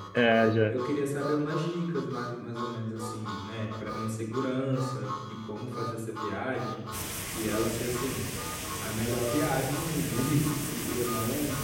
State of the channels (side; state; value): both; identical; correlation 1.00